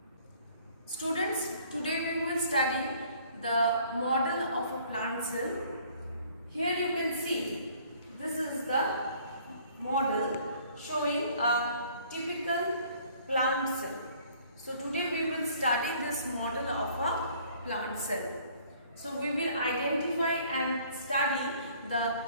Students, today we will study the model of a plant cell. Here you can see this is the model showing a typical plant cell. So today we will study this model of a plant cell. So we will identify and study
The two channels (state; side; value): inverted; both; correlation -0.57